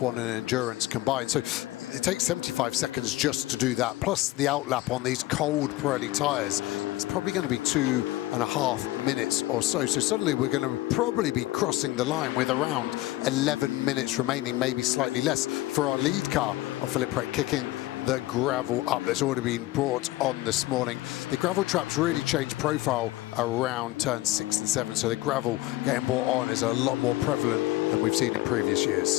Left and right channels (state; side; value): quieter; right; 17.6 dB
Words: and endurance combined. So it takes 75 seconds just to do that. Plus the outlap on these cold Pirelli tyres. It's probably going to be 2.5 minutes or so. So suddenly we're going to probably be crossing the line with around 11 minutes remaining, maybe slightly less, for our lead car of Philippe Pret kicking the gravel up that's already been brought on this morning. The gravel traps really change profile around turns 6 and 7, so the gravel getting brought on is a lot more prevalent than we've seen in previous